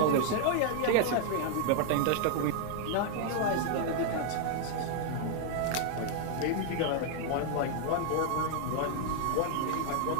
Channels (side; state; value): both; different; correlation 0.00